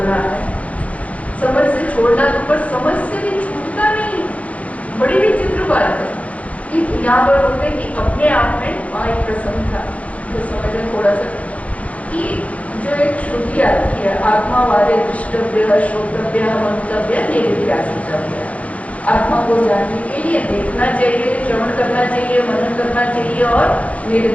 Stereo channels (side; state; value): right; late; 0.065 ms